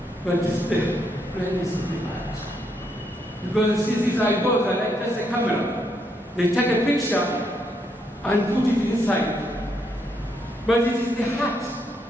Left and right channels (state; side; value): normal; both; correlation 0.76